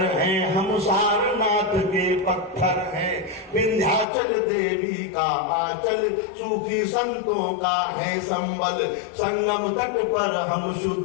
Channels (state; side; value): drops out; right; at 4.0 s